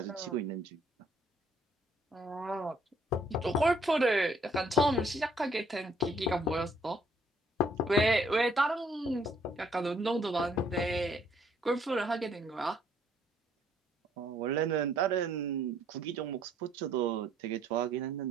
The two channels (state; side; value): normal; both; correlation 0.65